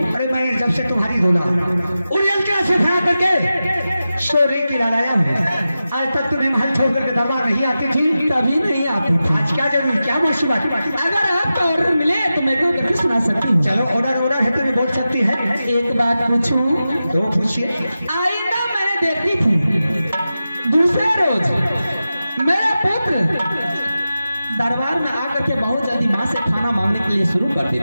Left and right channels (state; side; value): inverted; both; correlation -0.93